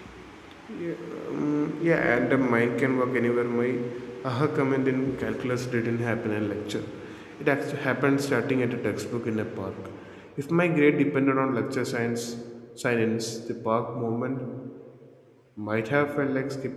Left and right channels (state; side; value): identical; both; correlation 1.00